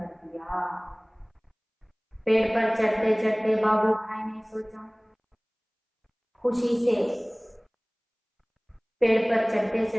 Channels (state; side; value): identical; both; correlation 1.00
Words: दिया। पेड़ पर चढ़ते चढ़ते बाबू भाई ने सोचा, खुशी से पेड़ पर चढ़ते